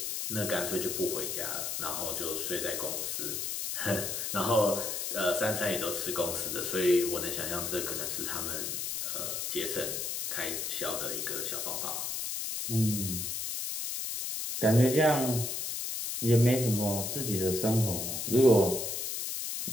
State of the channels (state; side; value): noise; left; hiss, 3 dB below the sound